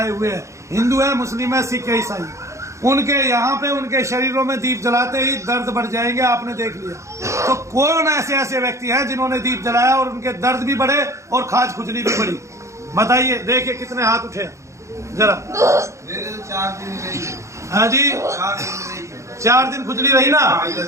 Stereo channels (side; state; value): left; late; 0.14 ms